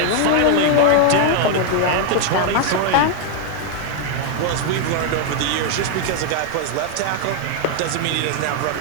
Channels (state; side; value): different; both; correlation 0.00